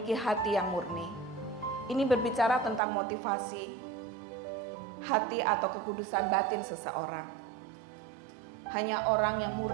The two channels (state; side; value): drops out; left; at 2.8 s